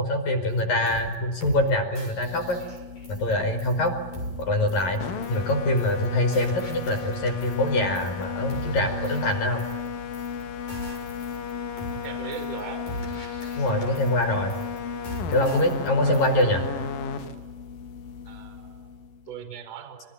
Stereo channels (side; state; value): right; late; 11 ms